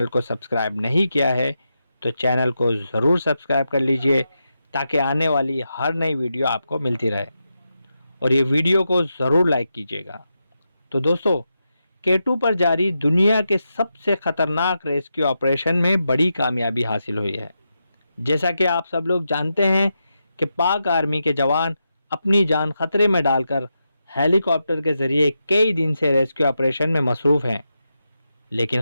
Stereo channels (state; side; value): inverted; both; correlation -0.87